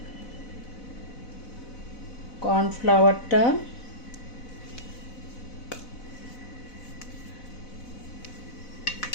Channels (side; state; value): right; late; 4.0 ms